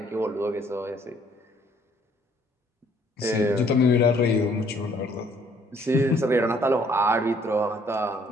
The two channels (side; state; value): both; normal; correlation 0.63